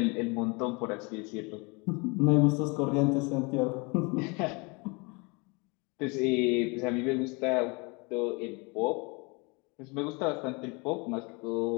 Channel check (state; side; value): quieter; right; 29.4 dB